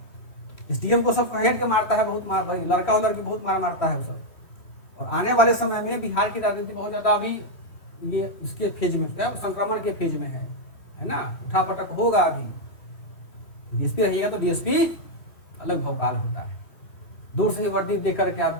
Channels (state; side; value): late; right; 3.1 ms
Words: एसडीएम को सब हेड के मारता है, बहुत मार भाई, लड़का और लड़की बहुत मार मारता है वो सब। और आने वाले समय में बिहार की राजनीति बहुत ज्यादा अभी ये इसके फेज में क्या संक्रमण के फेज में है ना, उठापटक होगा। अभी डीएसपी रहिएगा तो डीएसपी अलग भौकाल होता है। दूर से ही वर्दी देख करके